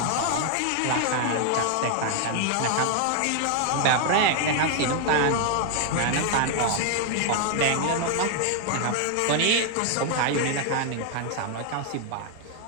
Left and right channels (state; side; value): different; both; correlation 0.00